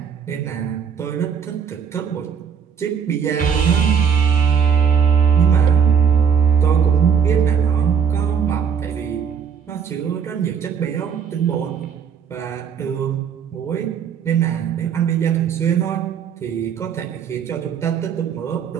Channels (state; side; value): quieter; left; 7.1 dB